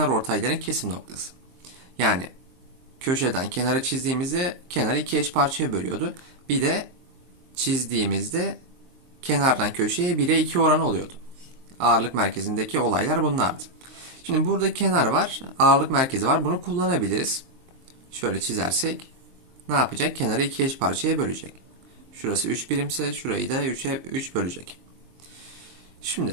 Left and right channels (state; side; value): late; left; 23 ms